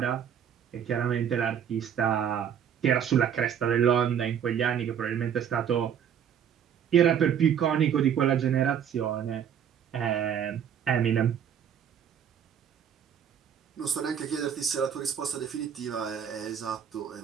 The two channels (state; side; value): quieter; left; 8.5 dB